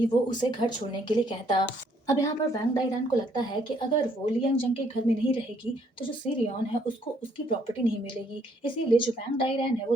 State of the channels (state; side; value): normal; both; correlation 0.67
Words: वो उसे घर छोड़ने के लिए कहता। अब यहाँ पर वैंग डाइरैन को लगता है कि अगर वो ली यंग जंग के घर में नहीं रहेगी तो जो सी रियॉन है उसको उसकी प्रॉपर्टी नहीं मिलेगी, इसीलिए जो वैंग डाइरैन है वो